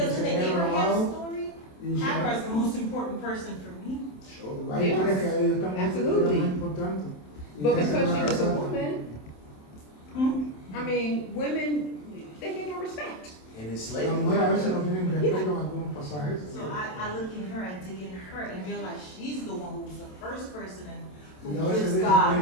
in the Abraham story, Hagar is the most important person for me. Yes, absolutely. But because she was a woman, I mean, women, they get no respect. And it's slavery. So I look in her, I dig in her, and realize she's the one who was the first person who gives God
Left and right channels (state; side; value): late; right; 27 ms